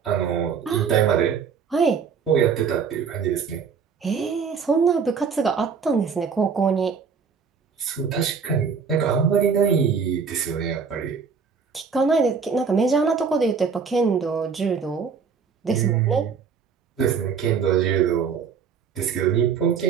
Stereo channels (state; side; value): quieter; left; 6.0 dB